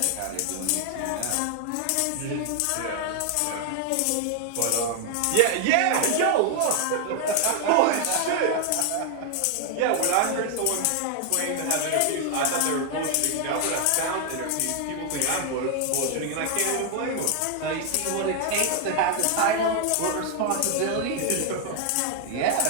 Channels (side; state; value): both; different; correlation 0.00